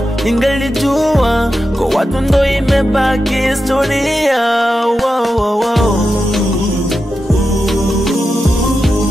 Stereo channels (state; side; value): normal; both; correlation 0.90